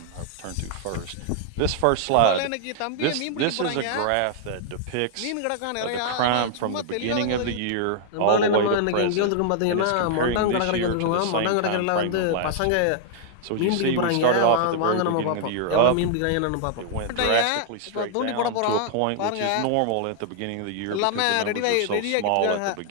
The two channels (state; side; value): different; both; correlation -0.01